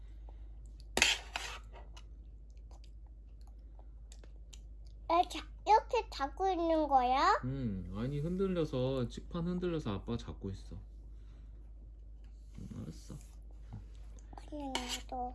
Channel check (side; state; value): both; identical; correlation 1.00